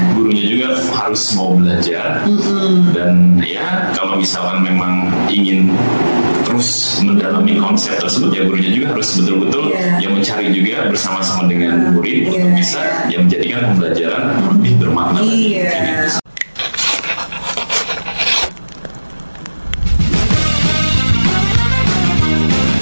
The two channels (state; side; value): inverted; both; correlation -1.00